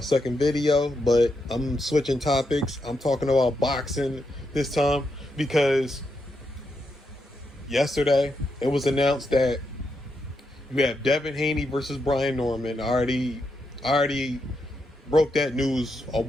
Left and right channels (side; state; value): both; normal; correlation 0.83